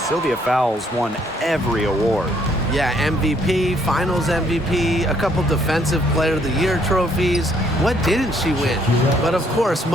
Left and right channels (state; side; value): normal; both; correlation 0.67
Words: Fowles won every award. Yeah, MVP, Finals MVP, a couple Defensive Player of the Year trophies. What didn't she win? But of course,